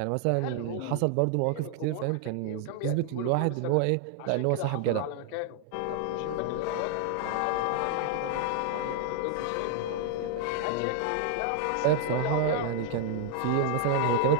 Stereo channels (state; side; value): different; both; correlation 0.00